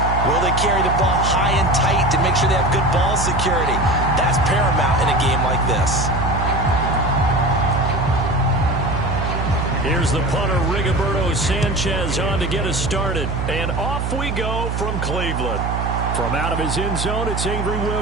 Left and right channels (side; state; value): right; noise; hum, 2 dB below the sound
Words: Will they carry the ball high and tight to make sure they have good ball security? That's paramount in a game like this. Here's the punter, Rigoberto Sanchez, on to get us started. And off we go from Cleveland. From out of his end zone, it's Avery